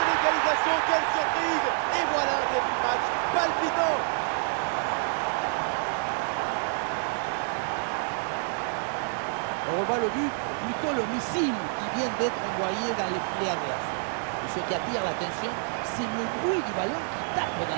Quelle surprise! Et voilà un début de match palpitant! On revoit le but, plutôt le missile qui vient d'être envoyé dans les filets adverses. Et ce qui attire l'attention, c'est le bruit du ballon qui tape dans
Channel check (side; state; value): left; silent; 59 dB below the other